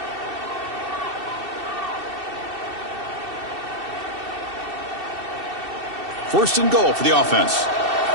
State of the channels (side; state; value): left; late; 2.7 ms